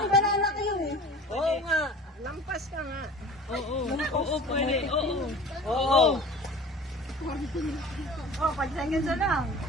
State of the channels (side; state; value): both; normal; correlation 0.42